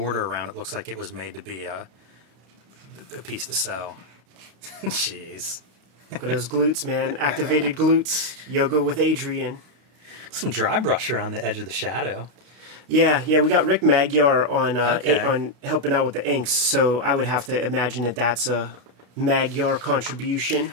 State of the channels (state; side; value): late; left; 32 ms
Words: around it, looks like it was made to be a piece to sell. Jeez. Look at those glutes, man. Activated glutes. Yoga with Adrian. Some dry brush around the edge of the shadow. Yeah, we got Rick Magyar on helping out with the inks, so I would have to imagine that that's a Magyar contribution.